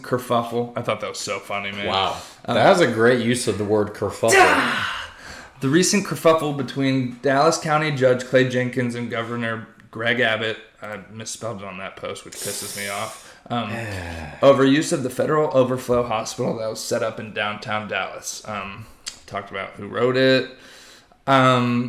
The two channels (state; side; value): identical; both; correlation 1.00